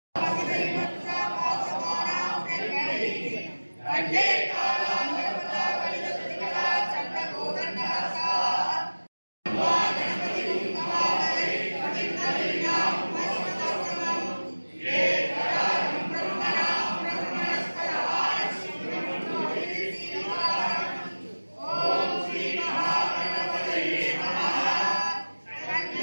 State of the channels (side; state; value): both; inverted; correlation -1.00